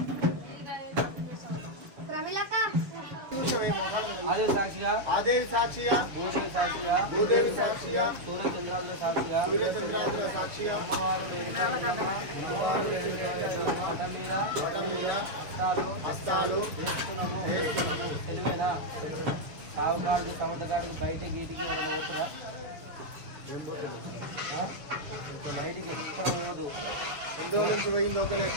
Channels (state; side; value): late; left; 7.0 ms